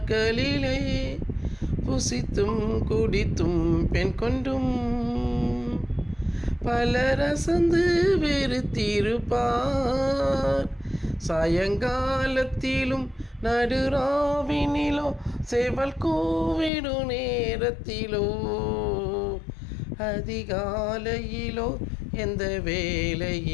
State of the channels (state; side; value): drops out; right; at 16.7 s